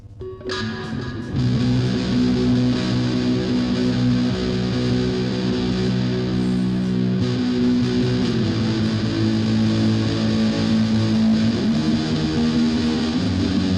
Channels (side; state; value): both; identical; correlation 1.00